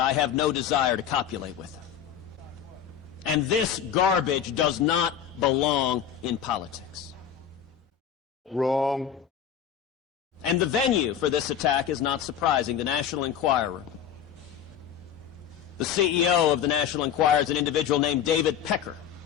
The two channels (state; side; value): quieter; right; 8.7 dB